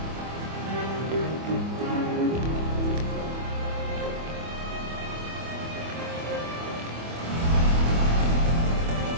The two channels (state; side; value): late; left; 25 ms